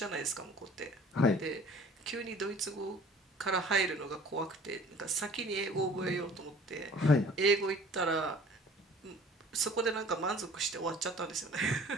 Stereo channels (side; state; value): both; normal; correlation 0.49